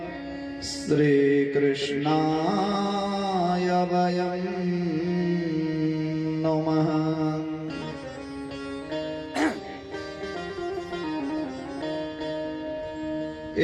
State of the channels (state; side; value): identical; both; correlation 1.00